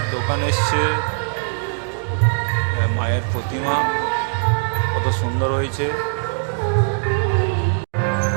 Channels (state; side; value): silent; left; 65 dB below the other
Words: দোকান এসছে, মায়ের প্রতিমা কত সুন্দর হয়েছে।